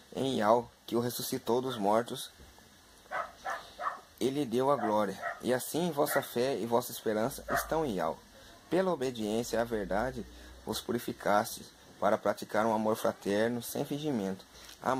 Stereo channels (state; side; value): identical; both; correlation 1.00